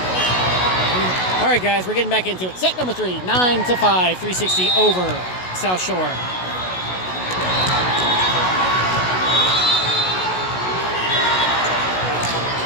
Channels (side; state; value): right; late; 16 ms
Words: All right, guys, we're getting back into it. Set number 3, 9-5, 360 over South Shore.